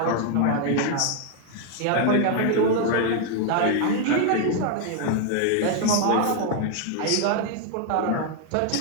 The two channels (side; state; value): both; different; correlation 0.00